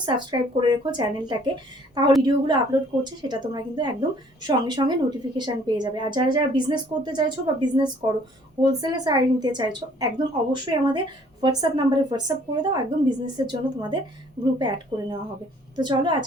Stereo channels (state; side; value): normal; both; correlation 0.58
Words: সাবস্ক্রাইব করে রেখো চ্যানেলটাকে, তাহলে ভিডিওগুলো আপলোড করছে সেটা তোমরা কিন্তু একদম সঙ্গে সঙ্গে নোটিফিকেশান পেয়ে যাবে। আর যারা যারা বিজনেস করতে চাইছো বা বিজনেস করো, হোলসেলে শাড়ি নিতে চাইছো, একদম অবশ্যই আমাদের হোয়াটসঅ্যাপ নাম্বারে হোয়াটসঅ্যাপ করে দাও, একদম বিজনেসের জন্য তোমাদের গ্রুপে অ্যাড করে নেওয়া হবে। তো চলো